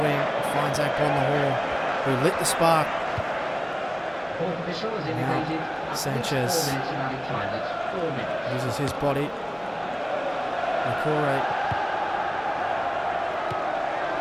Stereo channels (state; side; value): identical; both; correlation 1.00